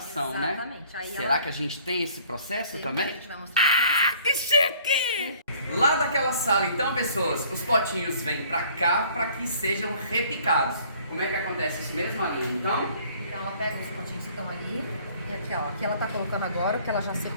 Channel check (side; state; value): both; inverted; correlation -0.56